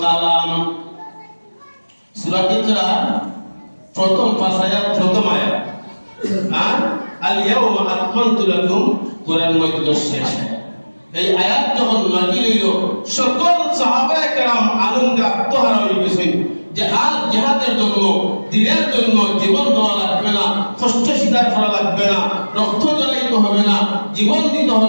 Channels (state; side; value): inverted; both; correlation -1.00